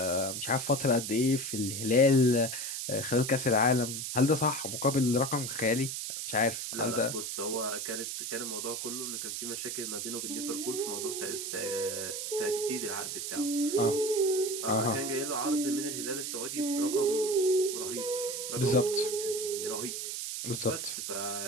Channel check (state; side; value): noise; right; hiss, 4 dB below the sound